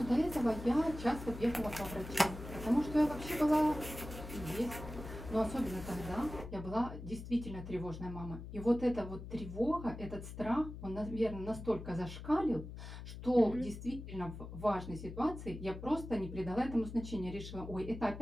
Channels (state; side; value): noise; left; hum, 10 dB below the sound